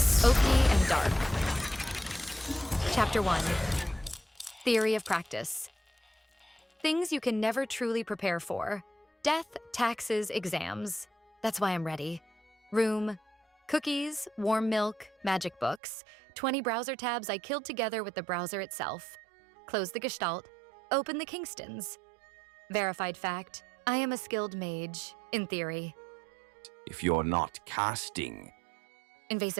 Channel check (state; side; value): drops out; left; at 15.8 s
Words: Oki and Dark. Chapter 1. Theory of Practice. Things you can never truly prepare for. Death, taxes, exams. That's why I'm ready. Room. Cookies, warm milk, magic books. 20 browser tabs I killed together with the browser itself. Close the Gestalt. Open the Kingstons. Verified fact. I am a skilled mage, in theory. If you're not casting.